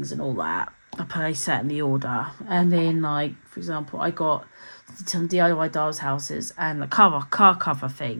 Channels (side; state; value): both; inverted; correlation -1.00